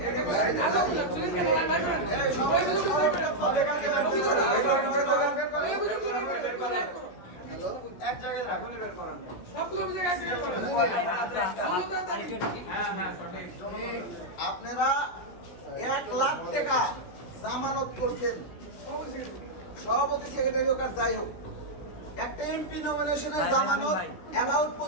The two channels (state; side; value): late; right; 17 ms